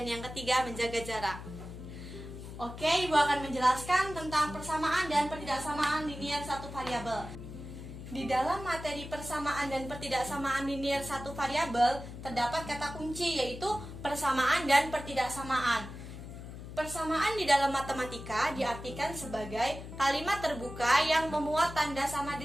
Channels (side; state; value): left; noise; hum, 11 dB below the sound